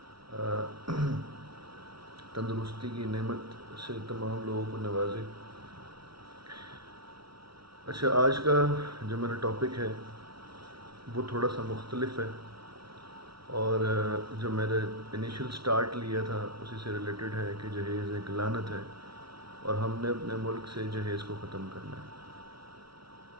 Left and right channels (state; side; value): late; left; 0.75 ms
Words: تندرستی کی نعمت سے تمام لوگوں کو نوازے۔ اچھا، آج کا جو میرا ٹاپک ہے وہ تھوڑا سا مختلف ہے، اور جو میرے انیشل سٹارٹ لیا تھا اسی سے ریلیٹڈ ہے کہ جہیز ایک لعنت ہے اور ہم نے اپنے ملک سے جہیز کو ختم کرنا ہے۔